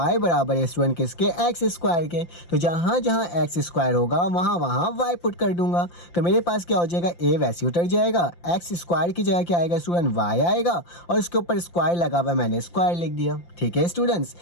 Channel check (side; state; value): right; late; 5.8 ms